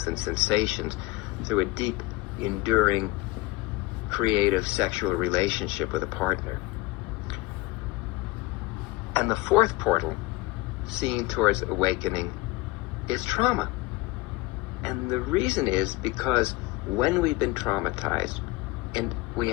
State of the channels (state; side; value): quieter; right; 21.5 dB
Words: and sensations through a deep, enduring, creative sexual relationship with a partner. And the fourth portal, seen towards awakening, is trauma. And the reason is because when we've been traumatized, and we